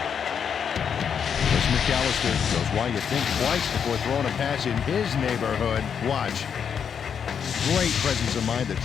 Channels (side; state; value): right; quieter; 7.4 dB